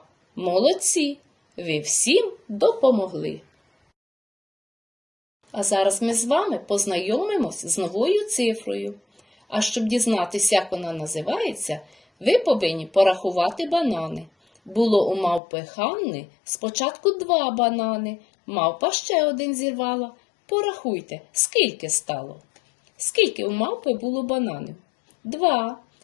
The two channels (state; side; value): drops out; right; at 15.4 s